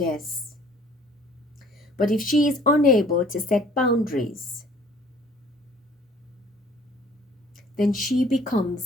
But if she is unable to set boundaries, then she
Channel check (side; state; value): both; normal; correlation 0.54